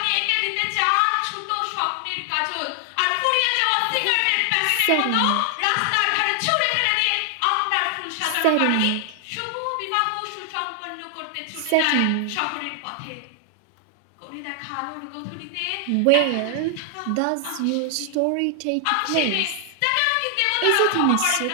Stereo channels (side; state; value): both; different; correlation 0.00